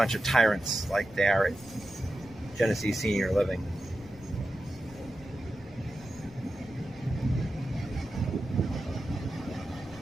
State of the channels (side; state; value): left; noise; rumble, 19 dB below the sound